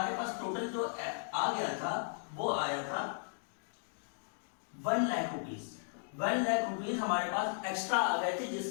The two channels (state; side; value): silent; right; digital silence